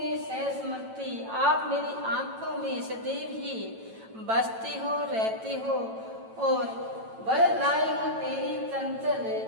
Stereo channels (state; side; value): late; left; 9.0 ms